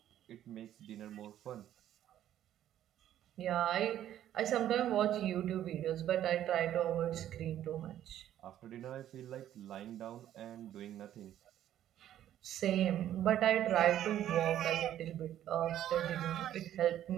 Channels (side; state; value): left; quieter; 11.7 dB